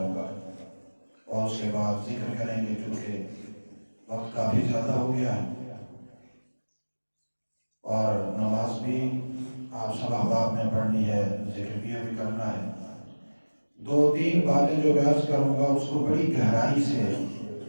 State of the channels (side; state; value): both; inverted; correlation -1.00